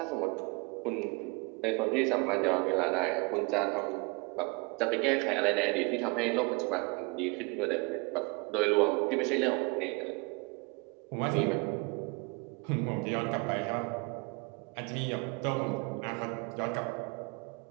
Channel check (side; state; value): left; quieter; 29.8 dB